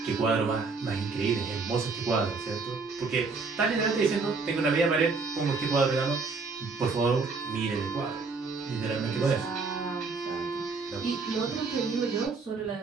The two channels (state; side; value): quieter; left; 4.3 dB